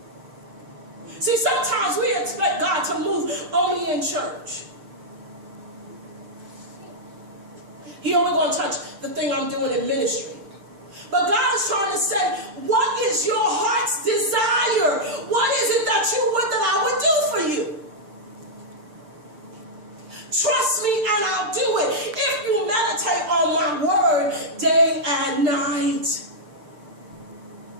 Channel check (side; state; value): left; late; 6.7 ms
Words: See, sometimes we expect God to move only in church. He only going to touch the thing I'm doing in ministry. But God is trying to say, what is your heart's desire? What is it that you would that I would do for you? Trust me and I'll do it. If you meditate on my word day and night.